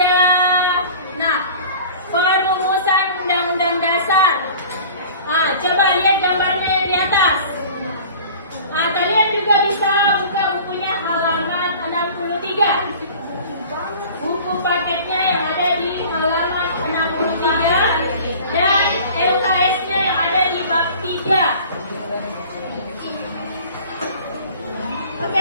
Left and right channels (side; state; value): both; inverted; correlation -0.43